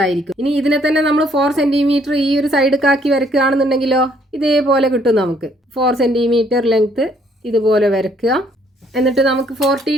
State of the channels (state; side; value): normal; both; correlation 0.66